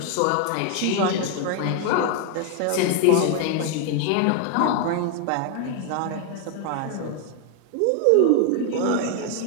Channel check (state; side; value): different; both; correlation 0.01